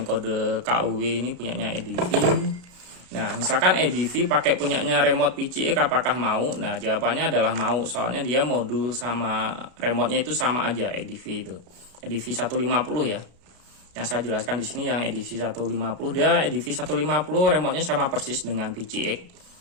kode KUW, ini punyanya EDV. Nah, misalkan EDV pakai punyanya remote PCX, apakah mau? Nah, jawabannya adalah mau, soalnya dia modul sama remote-nya itu sama aja, EDV itu. EDV 150 ya. Yang saya jelaskan di sini yang EDV 150, dia EDV 150 remote-nya sama persis dengan PCX.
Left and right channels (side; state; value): left; late; 33 ms